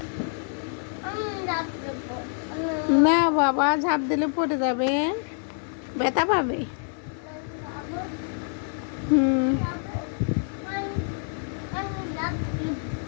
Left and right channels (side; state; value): right; silent; 60 dB below the other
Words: না বাবা, ঝাঁপ দিলে পড়ে যাবে, ব্যথা পাবে। হুম।